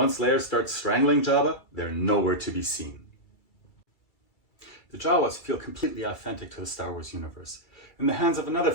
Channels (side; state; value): right; late; 2.3 ms